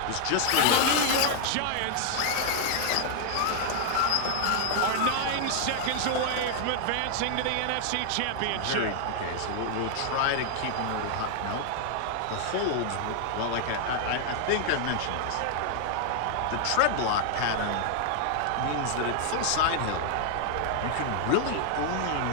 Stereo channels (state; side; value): different; both; correlation 0.00